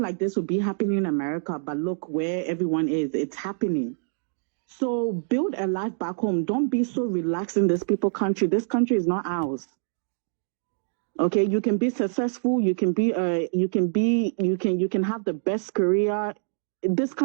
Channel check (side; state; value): left; silent; digital silence